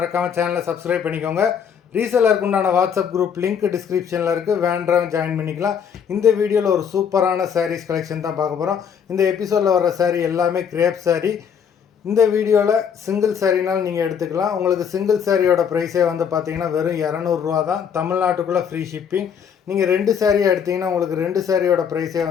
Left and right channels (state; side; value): quieter; right; 7.5 dB